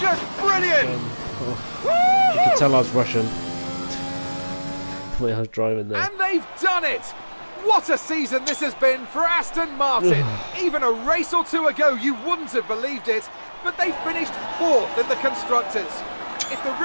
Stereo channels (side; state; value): both; inverted; correlation -1.00